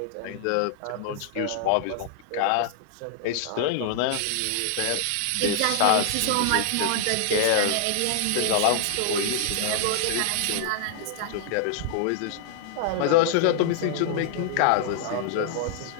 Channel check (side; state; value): both; different; correlation -0.01